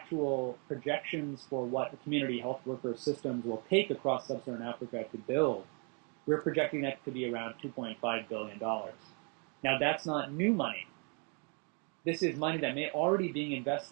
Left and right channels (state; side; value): quieter; left; 36.8 dB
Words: projections for what the community health worker systems will take across sub-Saharan Africa to build, we're projecting that to be around $2.5 billion. Now, that's not new money. This is money that may already be being